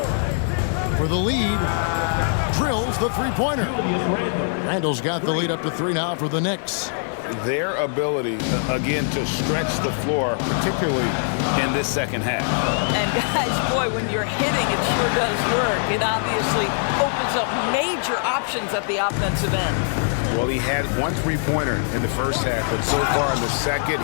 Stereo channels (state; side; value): silent; right; digital silence